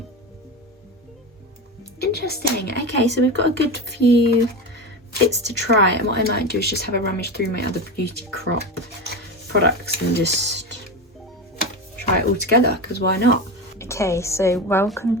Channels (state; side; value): normal; both; correlation 0.21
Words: Interesting. Okay, so we've got a good few bits to try, and what I might do is just have a rummage through my other Beauty Crop products and just try it all together, because why not? Okay, so welcome